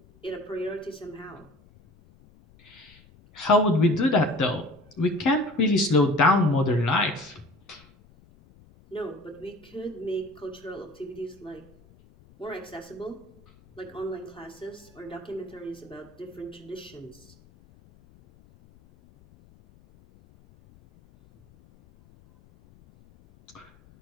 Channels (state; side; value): noise; left; rumble, 26 dB below the sound